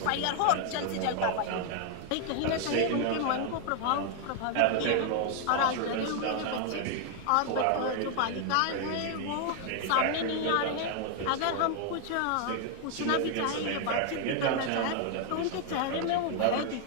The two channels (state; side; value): different; both; correlation 0.00